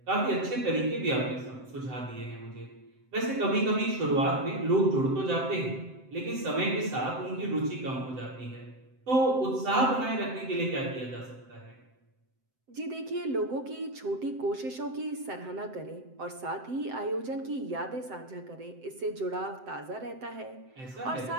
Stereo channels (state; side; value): late; left; 7.8 ms